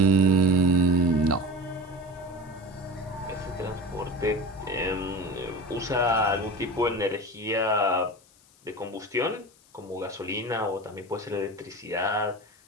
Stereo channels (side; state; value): left; noise; hiss, 29 dB below the sound